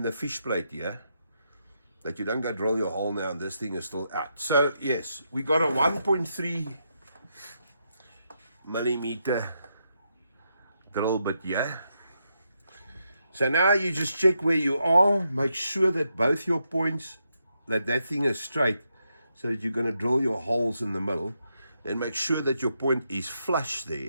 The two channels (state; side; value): inverted; both; correlation -0.82